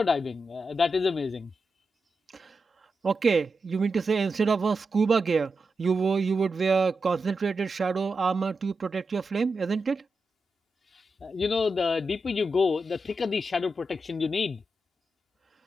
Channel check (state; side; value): normal; both; correlation 0.88